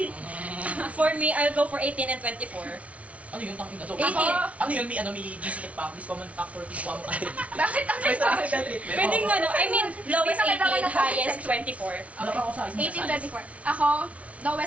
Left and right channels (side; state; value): left; late; 0.065 ms